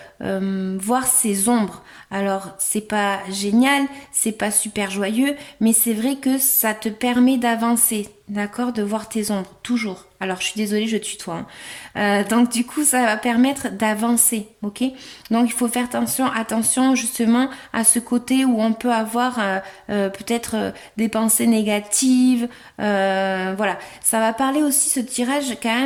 voir ses ombres. Alors, c'est pas génial, c'est pas super joyeux, mais c'est vrai que ça te permet d'avancer, d'accord, de voir tes ombres, toujours. Alors, je suis désolée, je tutoie. Hein. Donc, du coup, ça va permettre d'avancer, ok. Donc, il faut faire attention justement à ce côté où on peut avoir peut-être des pensées négatives. Voilà, ça va parler aussi ce tirage quand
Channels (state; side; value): identical; both; correlation 1.00